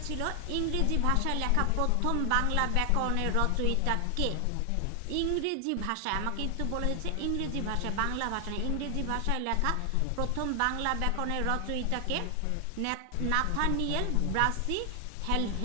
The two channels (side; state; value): both; different; correlation 0.00